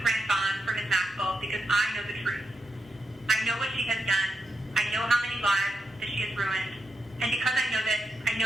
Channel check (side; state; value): both; normal; correlation 0.85